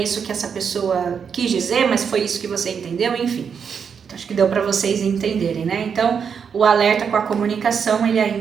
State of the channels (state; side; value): quieter; left; 6.8 dB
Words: isso que essa pessoa quis dizer, mas foi isso que você entendeu, enfim. Então, acho que deu para vocês entenderem, né? Então, o alerta com a comunicação, ele